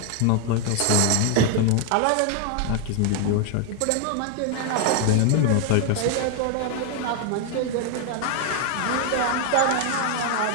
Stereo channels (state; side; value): different; both; correlation 0.00